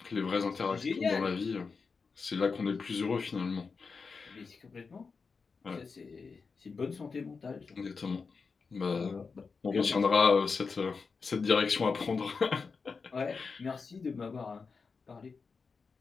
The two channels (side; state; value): right; quieter; 4.9 dB